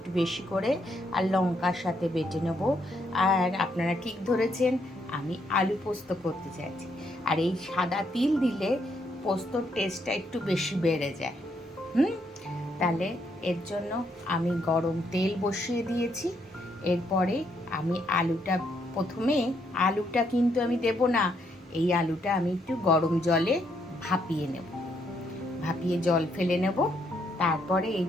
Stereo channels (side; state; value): both; normal; correlation 0.74